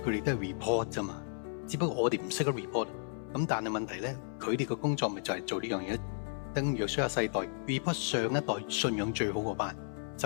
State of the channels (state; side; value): silent; right; 55 dB below the other